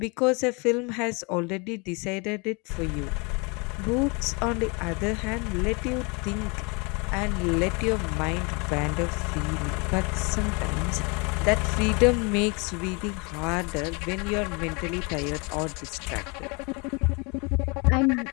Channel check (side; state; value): right; quieter; 30.4 dB